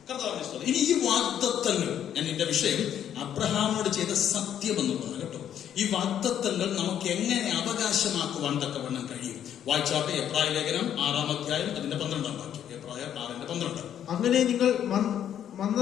ഇനി ഈ വാഗ്ദത്തങ്ങൾ, ഞാൻ എന്റെ വിഷയം അബ്രഹാമിനോട് ചെയ്ത സത്യം എന്നുള്ളതാണ് കേട്ടോ. ഈ വാഗ്ദത്തങ്ങൾ നമുക്ക് എങ്ങനെ അവകാശമാക്കുവാൻ തക്കവണ്ണം കഴിയും? വായിച്ചാട്ടെ എബ്രായ ലേഖനം 6-ാം അധ്യായം അതിന്റെ 12-ാം വാക്യം. എബ്രായ 6:12. അങ്ങനെ നിങ്ങൾ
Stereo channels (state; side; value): quieter; right; 9.9 dB